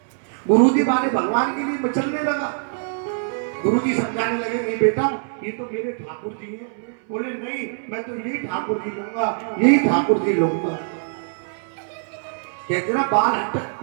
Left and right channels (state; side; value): silent; left; 61 dB below the other